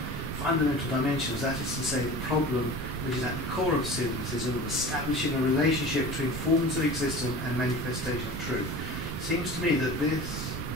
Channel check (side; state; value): right; noise; rumble, 8 dB below the sound